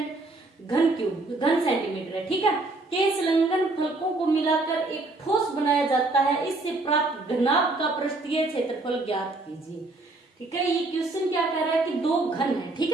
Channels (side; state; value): left; quieter; 3.1 dB